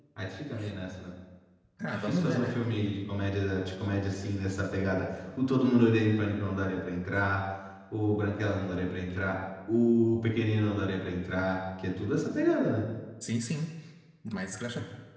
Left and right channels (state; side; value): identical; both; correlation 1.00